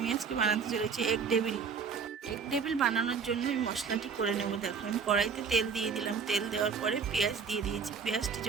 আজকে বানাতে চলেছি এগ ডেভিল বানানোর জন্য আমি মশলাটি করে নেব। দেখো, আমি কড়াইতে তেল দিয়ে দিলাম। তেল দেওয়ার পরে পেঁয়াজ দিয়ে দিয়েছি। পেঁয়াজটি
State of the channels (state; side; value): quieter; left; 5.9 dB